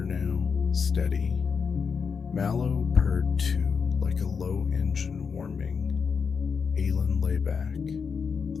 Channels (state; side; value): quieter; right; 5.8 dB